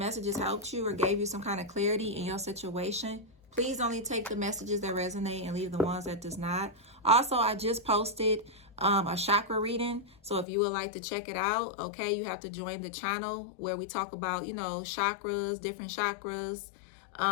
helped you or gave you some kind of clarity in your situation. Please only take the messages that resonate and leave the ones that does not. Also, I just posted a chakra reading. So if you would like to check it out, okay, you have to join the channel where we talk about, you know, chakras, different chakras.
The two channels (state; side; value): drops out; right; at 10.5 s